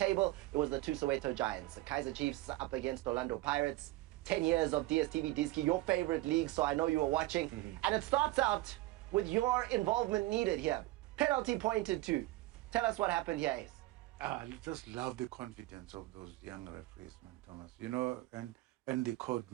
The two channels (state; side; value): quieter; left; 18.1 dB